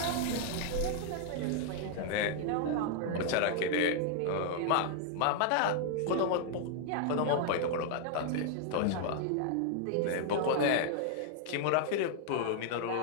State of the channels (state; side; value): different; both; correlation 0.00